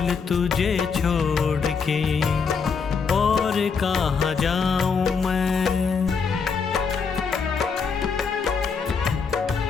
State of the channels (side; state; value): right; quieter; 5.6 dB